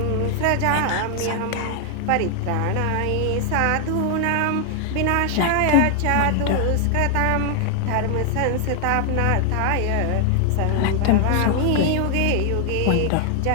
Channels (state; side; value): different; both; correlation 0.00